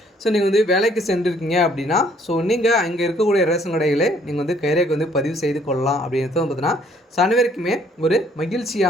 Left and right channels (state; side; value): normal; both; correlation 0.63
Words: நீங்கள் வந்து வேலைக்கு சென்றிருக்கீங்க அப்படின்னா, நீங்கள் அங்கே இருக்கக்கூடிய ரேஷன் கடைகளே நீங்கள் வந்து கைரேகை வந்து பதிவு செய்து கொள்ளலாம் அப்படின்றது வந்து பார்த்தீங்கன்னா, அனைவருக்குமே ஒரு